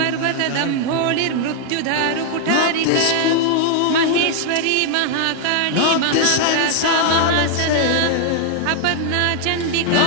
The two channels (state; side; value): different; both; correlation 0.00